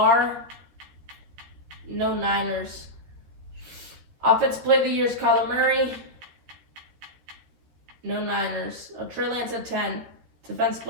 No Niners. Offensive Player of the Year is Kyler Murray. No Niners. Trey Lance at 10. Defensive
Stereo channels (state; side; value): late; left; 13 ms